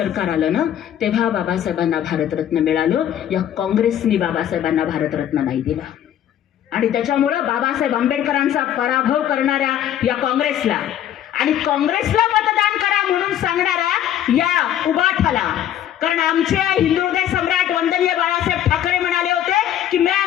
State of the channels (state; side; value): quieter; right; 10.8 dB